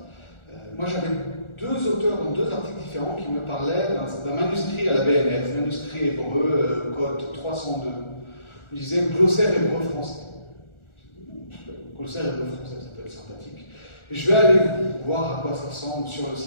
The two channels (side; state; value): right; late; 1.4 ms